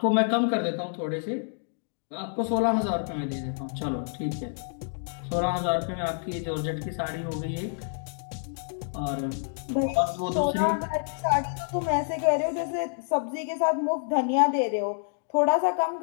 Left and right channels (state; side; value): silent; right; digital silence